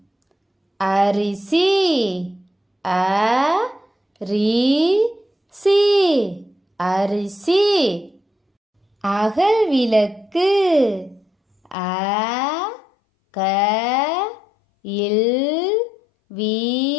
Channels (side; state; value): right; drops out; at 11.8 s